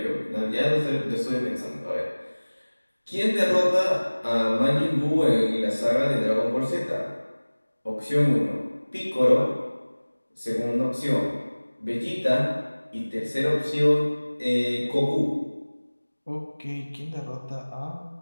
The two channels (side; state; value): both; inverted; correlation -1.00